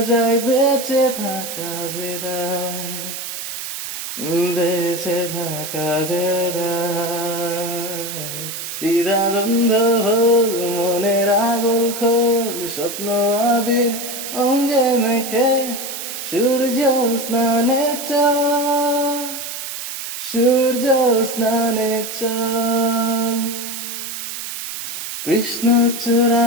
যায়, বেঁচে থাকা যে দায়, বেঁচে থাকা যে দায়। দ্বিধাদ্বন্দ্ব ভোল মনের আগল খোল, স্বপ্ন আবির অঙ্গে মেখে সূর্য স্নানে চল, সূর্য স্নানে চল।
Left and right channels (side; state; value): right; noise; hiss, 7 dB below the sound